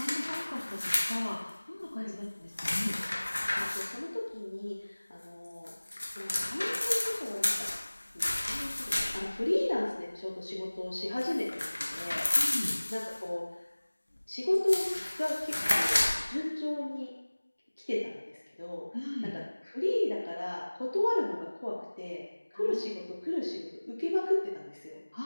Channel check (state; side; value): inverted; both; correlation -1.00